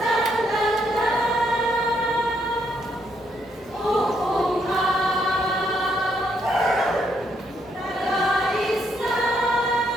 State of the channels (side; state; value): both; normal; correlation 0.74